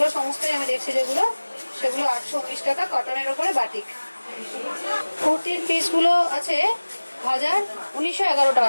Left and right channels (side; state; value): both; inverted; correlation -1.00